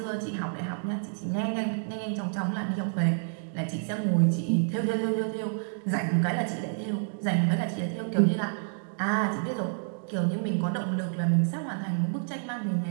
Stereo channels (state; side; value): silent; left; digital silence